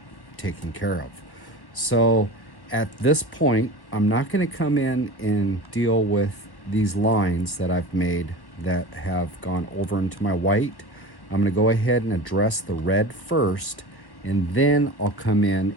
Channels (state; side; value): late; right; 1.1 ms